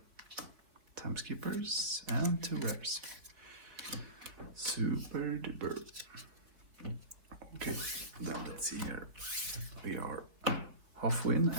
Time skippers and 2 rares. Super duper. Okay, then let's see here. We are halfway in,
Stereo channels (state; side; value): late; left; 4.3 ms